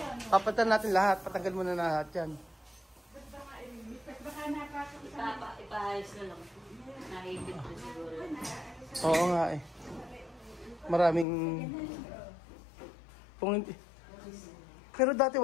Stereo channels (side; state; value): right; drops out; at 11.2 s